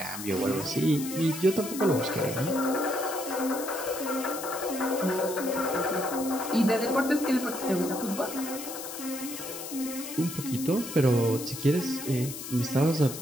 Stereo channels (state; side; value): noise; left; hiss, 9 dB below the sound